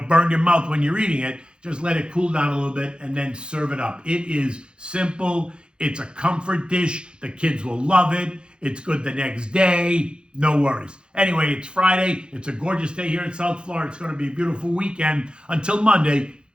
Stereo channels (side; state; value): left; late; 0.052 ms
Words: burn your mouth when you're eating it. Just let it cool down a little bit and then serve it up. It is simple. It's a comfort dish. The kids will love it. It's good the next day. No worries. Anyway, it's Friday. It's a gorgeous day here in South Florida. It's going to be a beautiful weekend. Until Monday,